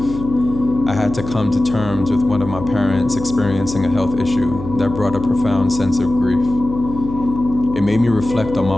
I had to come to terms with one of my parents experiencing a health issue that brought a profound sense of grief. It made me reflect on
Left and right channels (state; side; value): noise; left; hum, 10 dB below the sound